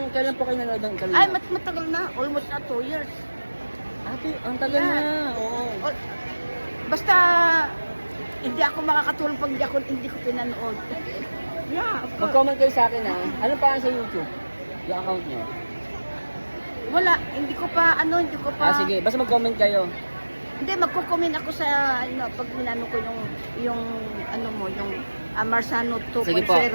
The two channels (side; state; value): both; inverted; correlation -1.00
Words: po kayo nanood ng kanina? Ay, matagal na. Almost na 2 years. Ate, ang tagal Yeah. na. Oo. O, basta, hindi ako makakatulong pag hindi ko pinanood. Yeah, of course. Mag-comment kayo sa akin, ha? Ano pa sa YouTube? Yung account nyo? Wala, hindi ko pa. Ah, sige. Basta mag-comment kayo. Hindi, magko-comment ako sa, pag minano ko yung Marsano 2.0. Sige po,